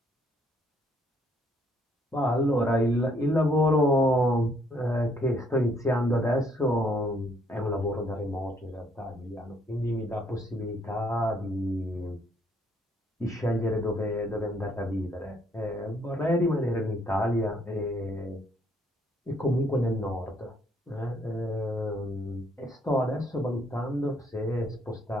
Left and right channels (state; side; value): normal; both; correlation 0.67